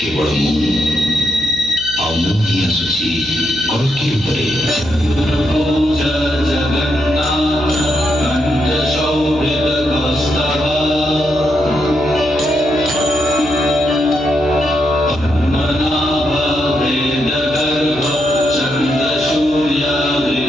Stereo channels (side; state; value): right; noise; hum, 17 dB below the sound